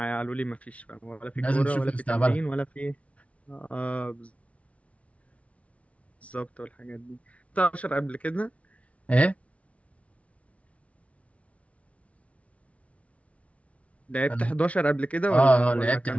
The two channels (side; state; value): right; late; 0.064 ms